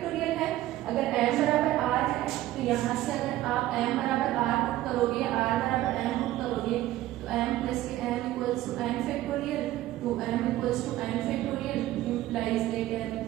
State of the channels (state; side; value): quieter; left; 15.1 dB